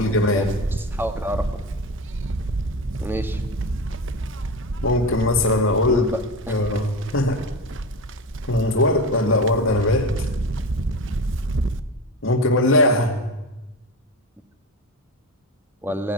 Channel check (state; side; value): normal; both; correlation 0.24